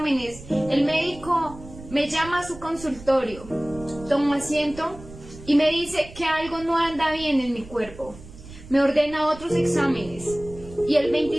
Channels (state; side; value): noise; right; rumble, 17 dB below the sound